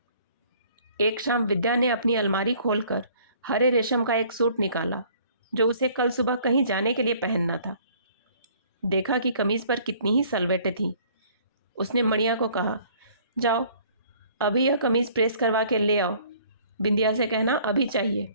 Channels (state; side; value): inverted; both; correlation -0.56